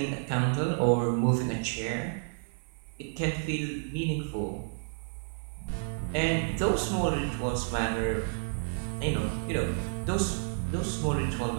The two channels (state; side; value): silent; left; 57 dB below the other